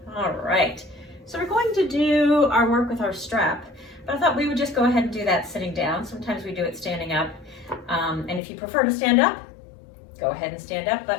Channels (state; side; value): drops out; right; at 8.4 s